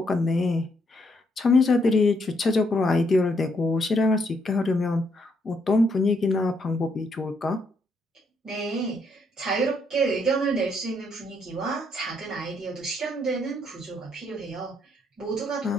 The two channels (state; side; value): normal; both; correlation 0.74